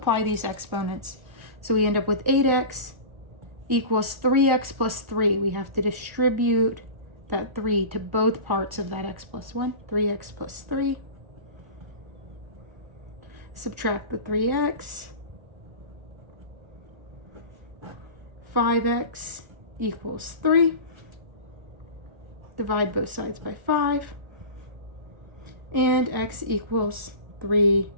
these exponents. So we end up with 8x equals 3x plus 3. We have to distribute that 3 to both parts of that x plus 1. 3x plus 3. Subtract the 3x. 5x equals 3. Divide both sides by 5. And x equals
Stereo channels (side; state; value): left; late; 1.3 ms